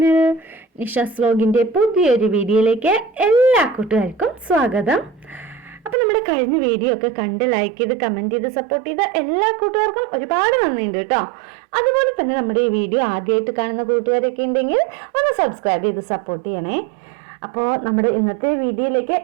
Nisha's വ്ലോഗിൻ്റെ പുതിയൊരു വീഡിയോയിലേക്ക് എല്ലാ കൂട്ടുകാർക്കും സ്വാഗതം. അപ്പോൾ നമ്മുടെ കഴിഞ്ഞ വീഡിയോ ഒക്കെ കണ്ട് ലൈക്ക് ചെയ്ത് കമൻറ്റ് ചെയ്ത് സപ്പോർട്ട് ചെയ്ത എല്ലാ കൂട്ടുകാർക്കും ഒരുപാട് നന്ദിയുണ്ട് കേട്ടോ. അതുപോലെ തന്നെ നമ്മുടെ ഈ വീഡിയോ ആദ്യമായിട്ട് കാണുന്ന കൂട്ടുകാരൊക്കെ ഉണ്ടെങ്കിൽ ഒന്ന് സബ്സ്ക്രൈബ് ചെയ്ത് സപ്പോർട്ട് ചെയ്യണേ. അപ്പോൾ നമ്മുടെ ഇന്നത്തെ വീഡിയോയിലേക്ക്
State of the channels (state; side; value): drops out; left; at 6.0 s